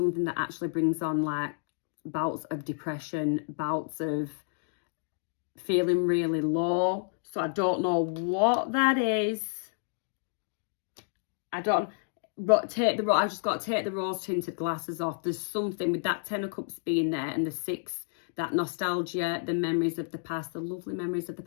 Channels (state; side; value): silent; right; digital silence